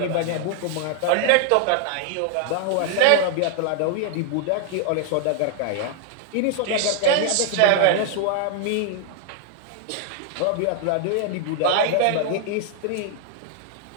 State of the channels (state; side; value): different; both; correlation 0.00